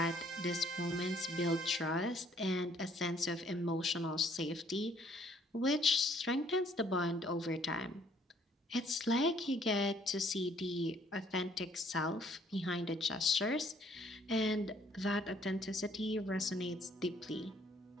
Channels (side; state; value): both; normal; correlation 0.63